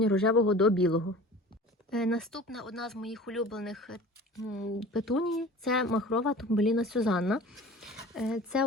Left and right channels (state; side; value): normal; both; correlation 0.41